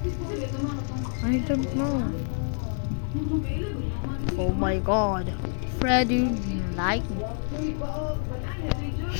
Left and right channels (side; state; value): right; silent; digital silence